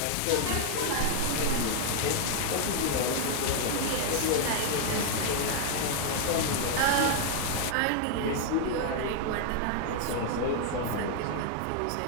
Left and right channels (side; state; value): both; different; correlation 0.00